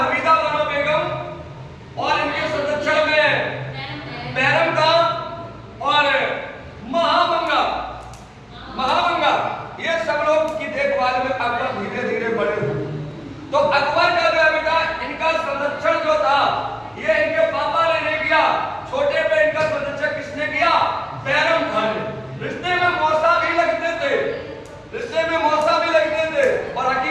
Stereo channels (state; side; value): identical; both; correlation 1.00